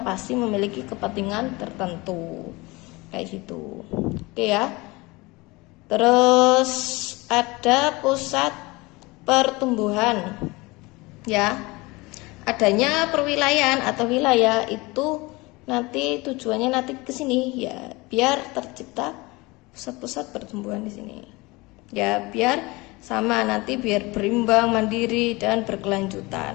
memiliki kepentingan tertentu kayak gitu. Oke ya. Terus ada pusat pertumbuhan ya. Adanya perwilayahan atau wilayah itu nanti tujuannya nanti ke sini ya, biar tercipta pusat-pusat pertumbuhan di sini. Ya, biar sama nanti biar berimbang, mandiri dan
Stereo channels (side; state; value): right; quieter; 23.4 dB